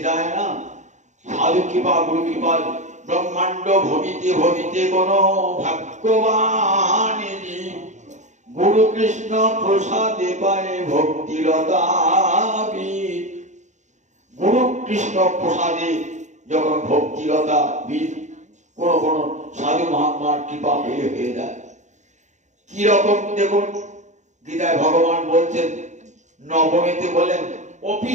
যায় না। সাধু কৃপা গুরু কৃপা ব্রহ্মাণ্ড ভবিতে ভবিতে কোন ভাগ্যবান গুরু কৃষ্ণ প্রসাদে পায় ভক্তিলতা। গুরু কৃষ্ণ প্রসাদে যখন ভক্তিলতা বীজ কোন কোন সাধু মহাত্মার কৃপা পেয়ে হয়ে যায়। কি রকম দেখুন গীতায় ভগবান বলছেন নবমীতে বলেন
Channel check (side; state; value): left; late; 0.34 ms